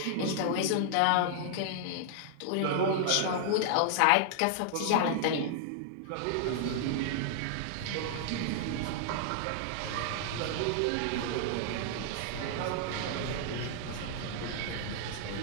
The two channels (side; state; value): both; different; correlation -0.01